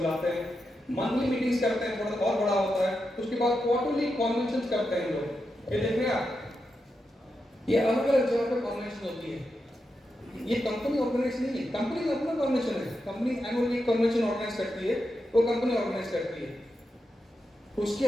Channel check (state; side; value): normal; both; correlation 0.87